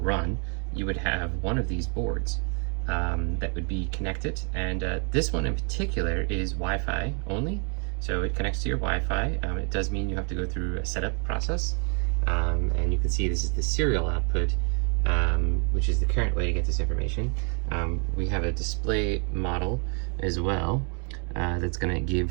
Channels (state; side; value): quieter; left; 39.4 dB